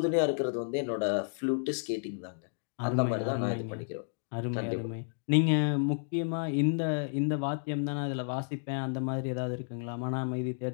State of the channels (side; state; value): right; silent; digital silence